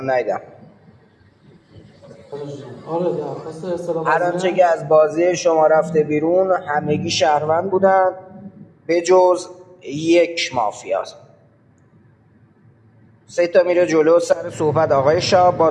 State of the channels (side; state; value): both; identical; correlation 1.00